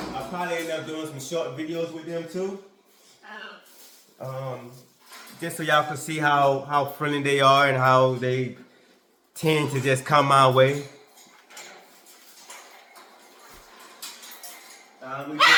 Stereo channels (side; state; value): both; identical; correlation 1.00